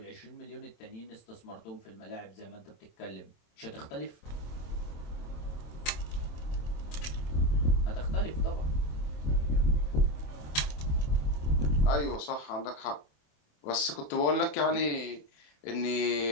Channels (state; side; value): late; right; 27 ms